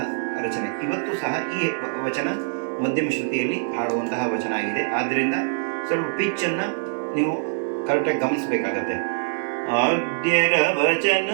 ರಚನೆ. ಇವತ್ತು ಸಹ ಈ ವಚನ ಮಧ್ಯಮ ಶ್ರುತಿಯಲ್ಲಿ ಹಾಡುವಂತಹ ವಚನ ಆಗಿದೆ. ಆದ್ದರಿಂದ ಸ್ವಲ್ಪ ಪಿಚ್ಚನ್ನು ನೀವು ಕರೆಕ್ಟಾಗಿ ಗಮನಿಸಬೇಕಾಗತ್ತೆ. ಆದ್ಯರ ವಚನ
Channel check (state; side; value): silent; left; digital silence